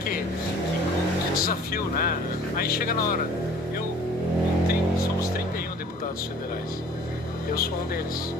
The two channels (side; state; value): both; normal; correlation 0.50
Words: desafio, né? Aí chega na hora, somos 31 deputados federais, eu sou um deles.